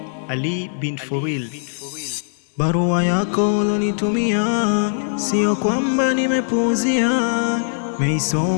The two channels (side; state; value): right; silent; 66 dB below the other